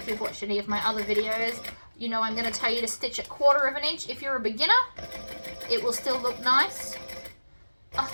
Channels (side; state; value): both; inverted; correlation -1.00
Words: you've watched any of my other videos, you know I'm going to tell you to stitch it 1/4 of an inch. If you're a beginner, it will still look nice. Oh,